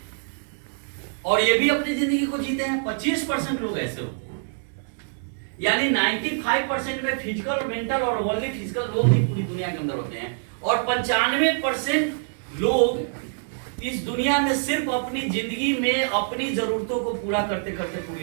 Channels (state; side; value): silent; left; digital silence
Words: और ये भी अपनी जिंदगी को जीते हैं। 25% लोग ऐसे होते हैं, यानी 95% में फिजिकल, मेंटल और ओनली फिजिकल लोग ही पूरी दुनिया के अंदर होते हैं और 95% लोग इस दुनिया में सिर्फ अपनी जिंदगी में अपनी जरूरतों को पूरा करते करते